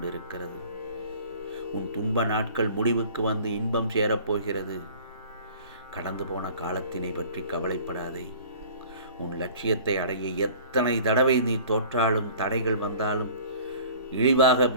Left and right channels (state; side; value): inverted; both; correlation -0.46